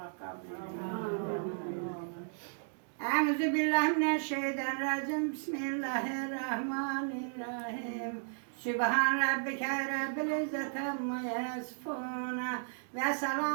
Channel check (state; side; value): silent; left; digital silence